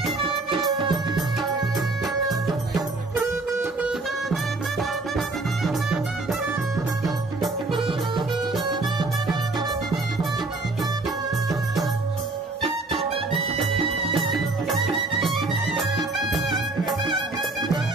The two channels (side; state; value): left; quieter; 3.3 dB